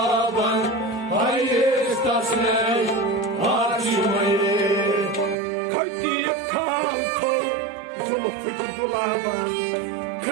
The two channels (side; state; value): left; drops out; at 5.4 s